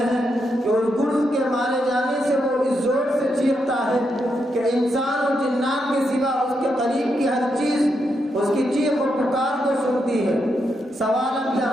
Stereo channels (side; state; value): both; normal; correlation 0.82